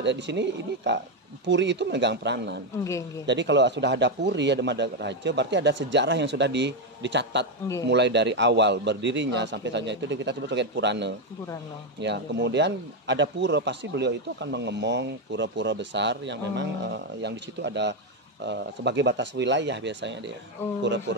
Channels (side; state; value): both; normal; correlation 0.06